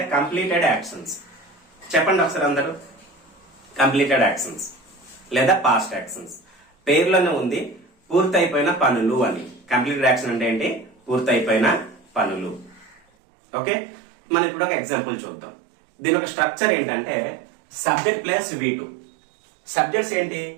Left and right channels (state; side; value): drops out; left; at 13.0 s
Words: కంప్లీటెడ్ యాక్షన్స్. చెప్పండి ఒకసారి అందరూ. కంప్లీటెడ్ యాక్షన్స్ లేదా పాస్ట్ యాక్షన్స్. పేర్లోనే ఉంది పూర్తయిపోయిన పనులు అని. కంప్లీటెడ్ యాక్షన్ అంటే ఏంటి? పూర్తయిపోయిన పనులు. ఓకే, మనం ఇప్పుడు ఒక ఎగ్జాంపుల్ చూద్దాం. దీని ఒక స్ట్రక్చర్ ఏంటంటే సబ్జెక్ట్ ప్లస్ V2. సబ్జెక్ట్స్ ఏంటి?